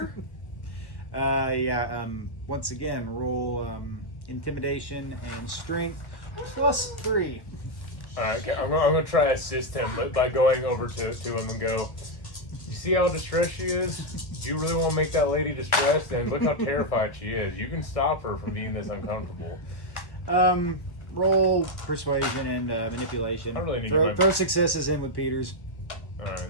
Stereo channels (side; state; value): right; late; 1.1 ms